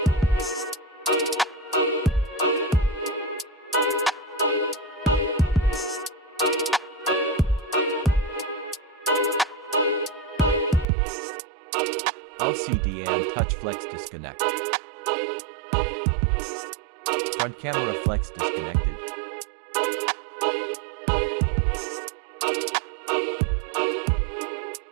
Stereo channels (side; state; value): left; drops out; at 10.9 s